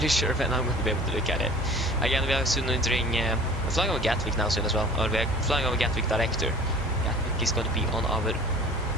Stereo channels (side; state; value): both; normal; correlation 0.45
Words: sure when I'm going to be able to look at it. Again, we are soon entering... we're flying over Gatwick now soon as well. Or we're flying over Gatwick director. Gatwick is going to be on our...